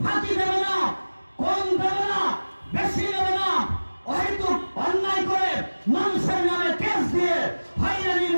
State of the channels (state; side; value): inverted; both; correlation -1.00